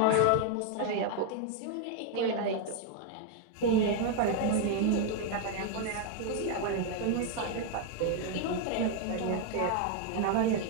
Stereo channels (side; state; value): both; different; correlation 0.00